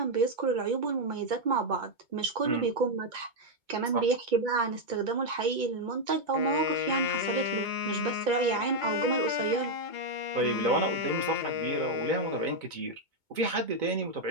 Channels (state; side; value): late; left; 2.2 ms